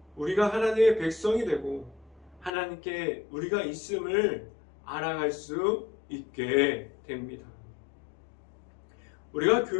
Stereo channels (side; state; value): right; drops out; at 2.5 s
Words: 우리가 하나님의 백성이 되고 하나님께 우리가 있음을 알아갈 수 있게 됩니다. 우리가